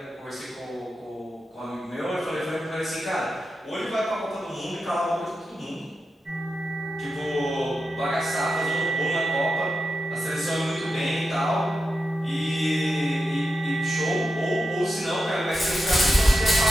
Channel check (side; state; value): both; normal; correlation 0.89